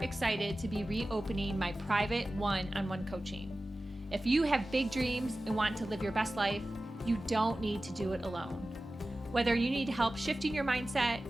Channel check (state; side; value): normal; both; correlation 0.95